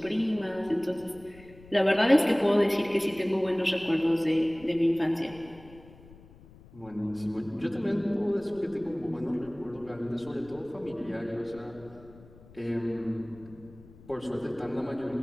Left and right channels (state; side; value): noise; left; rumble, 22 dB below the sound